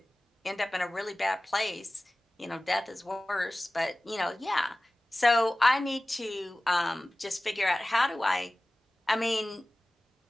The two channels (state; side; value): normal; both; correlation 0.97